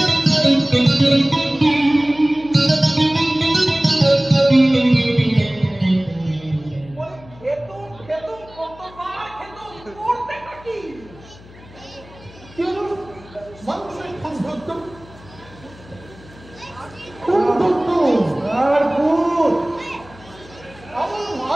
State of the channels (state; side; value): noise; left; hum, 21 dB below the sound